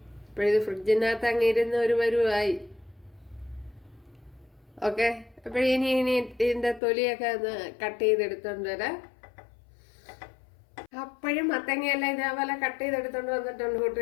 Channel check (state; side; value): drops out; right; at 6.8 s